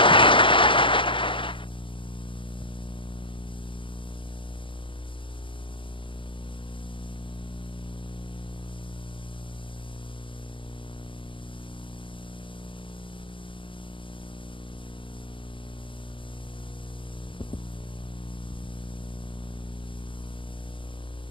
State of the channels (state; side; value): late; right; 0.25 ms